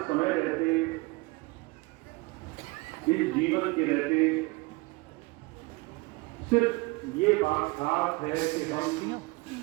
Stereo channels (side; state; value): left; quieter; 25.4 dB